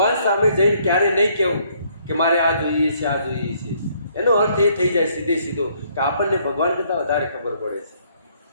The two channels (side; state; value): both; inverted; correlation -0.66